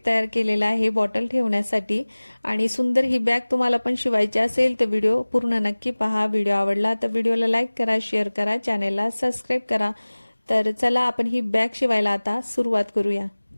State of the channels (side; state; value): both; inverted; correlation -1.00